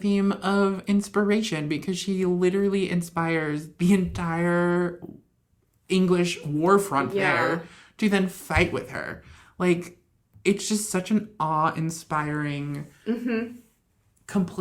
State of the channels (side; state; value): both; identical; correlation 1.00